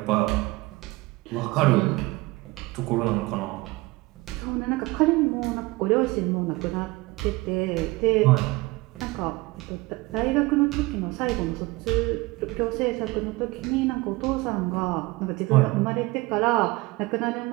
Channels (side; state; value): left; quieter; 22.1 dB